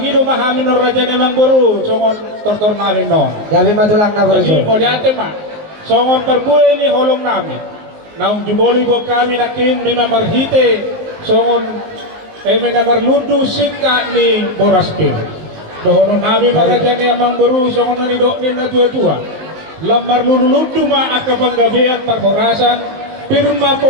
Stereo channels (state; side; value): late; left; 19 ms